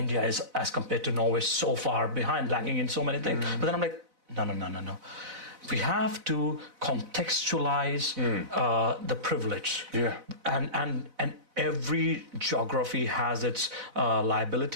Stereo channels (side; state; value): left; late; 4.0 ms